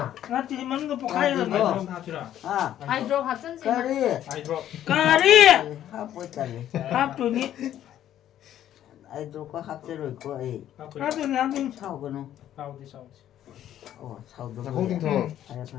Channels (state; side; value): quieter; right; 11.5 dB